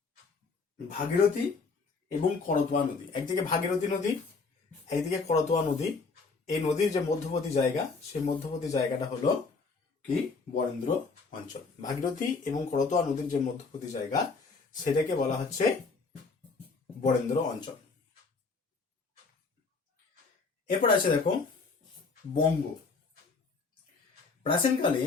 ভাগীরথী এবং করতোয়া নদী, একদিকে ভাগীরথী নদী, একদিকে করতোয়া নদী, এই নদীর যে মধ্যবর্তী জায়গা, সেই মধ্যবর্তী জায়গাটা হলো কি? বরেন্দ্র অঞ্চল। ভাগীরথী এবং করতোয়া নদীর যে মধ্যবর্তী জায়গা, সেটাকে বলা হচ্ছে বরেন্দ্র অঞ্চল। এরপর আছে দেখো বঙ্গ। প্রাচীনকালে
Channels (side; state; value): right; quieter; 4.4 dB